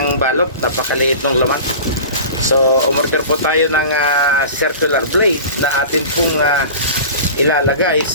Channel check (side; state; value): both; inverted; correlation -0.37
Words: balot, napakaliit ng laman. So umorder po tayo ng circular blade na atin pong ilalagay